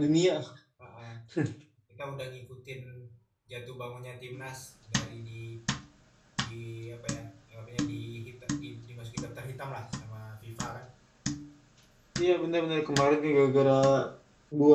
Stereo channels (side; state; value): both; identical; correlation 1.00